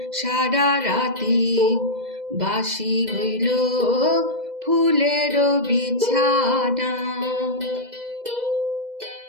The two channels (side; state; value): left; late; 2.0 ms